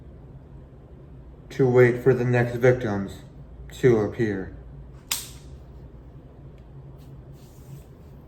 To wait for the next victims to appear.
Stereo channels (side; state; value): both; identical; correlation 1.00